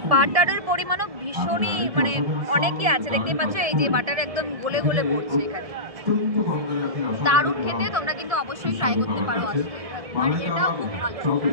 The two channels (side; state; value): left; late; 1.7 ms